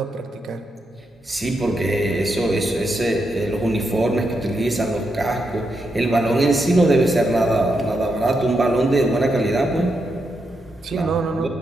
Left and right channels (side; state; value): both; normal; correlation 0.83